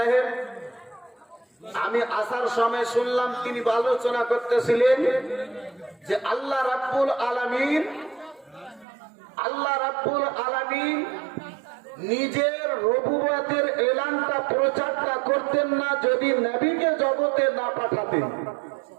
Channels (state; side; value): drops out; left; at 8.8 s